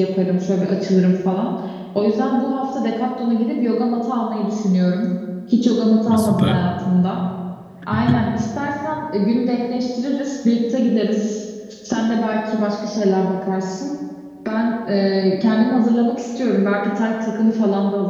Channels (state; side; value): identical; both; correlation 1.00